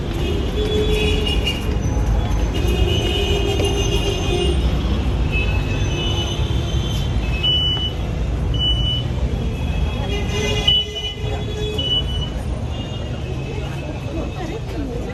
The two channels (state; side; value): identical; both; correlation 1.00